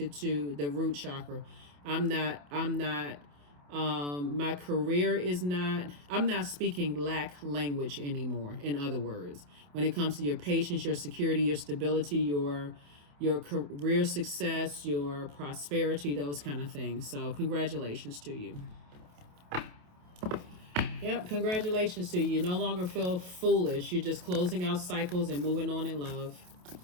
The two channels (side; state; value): left; late; 28 ms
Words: to the root chakra. I'm not my career is not, I'm not speaking lack language anymore. In other words, when it comes to your patience, your security, your stability, your career success, your prosperity, those kind of things. So congratulations to you. Yep, congratulations to you. You no longer feel foolish. You're just closing out cycles and moving on in love.